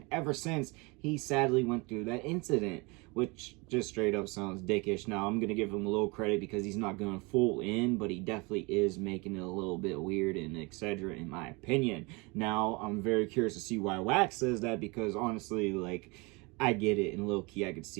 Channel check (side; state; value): left; quieter; 27.3 dB